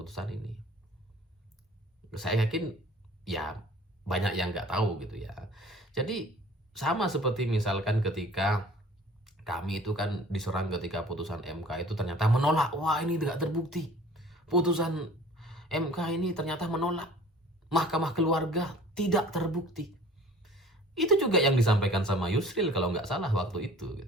ini. Saya yakin ya banyak yang nggak tahu gitu ya. Jadi sama seperti misalkan ketika kami itu kan diserang ketika putusan MK itu ternyata menolak. Wah, ini tidak terbukti. Putusan MK ini ternyata menolak. Mahkamah Keluarga tidak terbukti. Itu juga yang disampaikan sama Yusril kalau nggak salah waktu itu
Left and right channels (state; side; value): normal; both; correlation 0.48